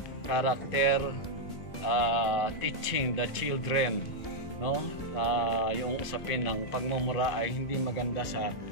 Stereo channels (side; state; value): right; late; 2.0 ms